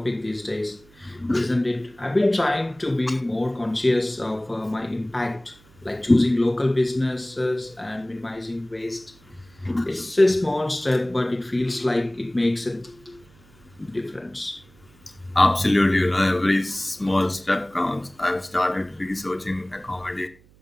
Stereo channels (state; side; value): noise; right; hum, 28 dB below the sound